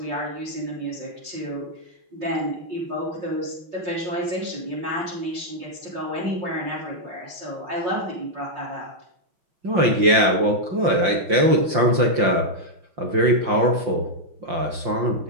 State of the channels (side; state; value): left; late; 5.8 ms